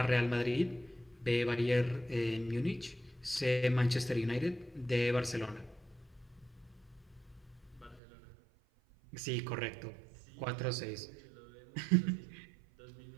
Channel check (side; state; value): left; drops out; at 8.0 s